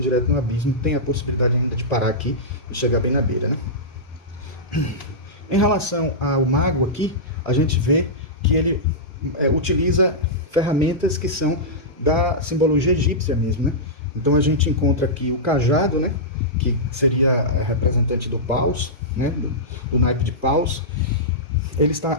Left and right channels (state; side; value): normal; both; correlation -0.14